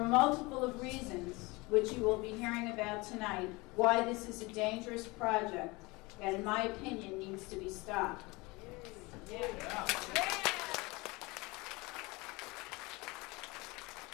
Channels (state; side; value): quieter; right; 24.3 dB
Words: multiple of reasons, which you will be hearing about tonight, why this is a dangerous project that, in my opinion, needs to be stopped.